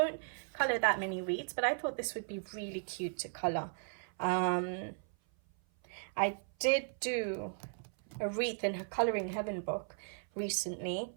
color that many wreaths, but I thought this would be really cute to color. I did do a wreath in her Coloring Heaven book recently.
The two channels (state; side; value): silent; left; 54 dB below the other